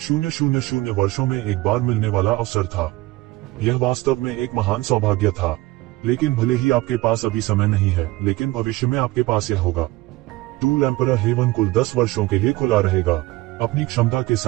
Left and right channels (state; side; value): quieter; left; 19.1 dB